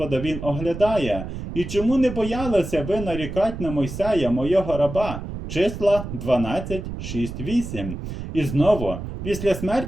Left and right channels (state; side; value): noise; right; rumble, 8 dB below the sound